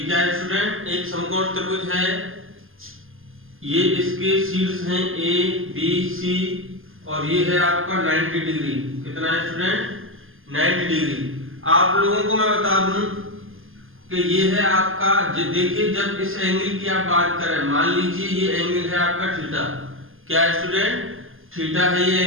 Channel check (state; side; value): late; left; 0.59 ms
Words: क्या है स्टूडेंट? एक समकोण त्रिभुज है। ये इसके शीर्ष हैं ए बी सी, और ये है आपका 90 डिग्री। कितना है स्टूडेंट? 90 डिग्री। आप लोगों को मैं बता दूं कि ये है आपका, देखिए जब इस एंगल की आप बात करें, मान लीजिए ये एंगल है आपका थीटा। क्या है स्टूडेंट? थीटा है ये